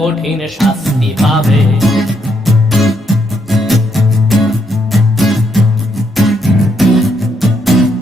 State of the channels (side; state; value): both; normal; correlation 0.76